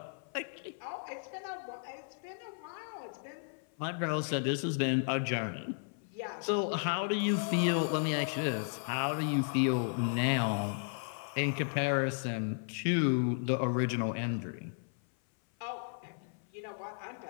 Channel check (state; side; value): silent; right; 55 dB below the other